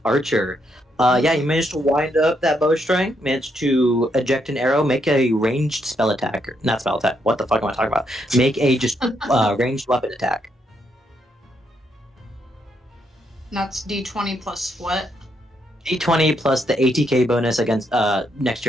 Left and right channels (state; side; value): normal; both; correlation 0.77